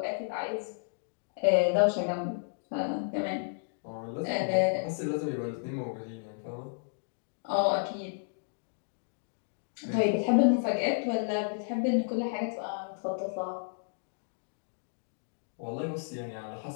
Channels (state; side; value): silent; right; digital silence